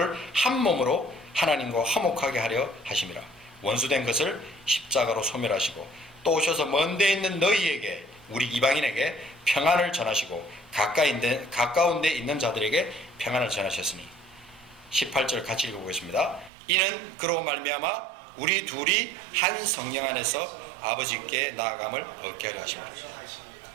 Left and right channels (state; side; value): drops out; left; at 16.5 s